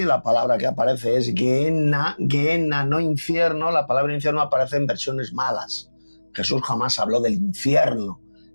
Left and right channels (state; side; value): inverted; both; correlation -1.00